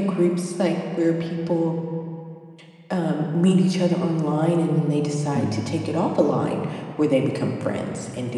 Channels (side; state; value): both; identical; correlation 1.00